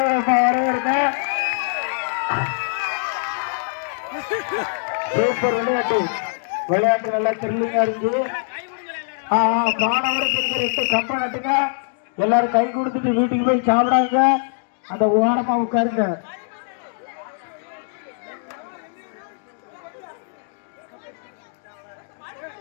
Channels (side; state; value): right; silent; digital silence